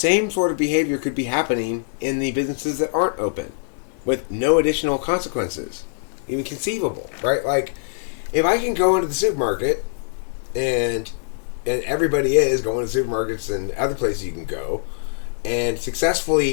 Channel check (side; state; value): right; silent; digital silence